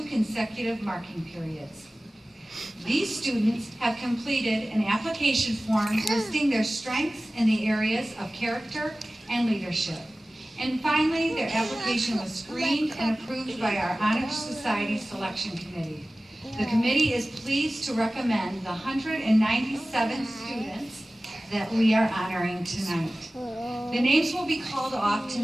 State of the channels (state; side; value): normal; both; correlation 0.97